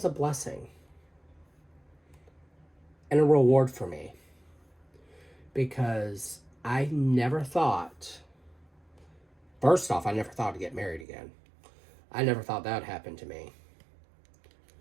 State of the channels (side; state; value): left; drops out; at 11.1 s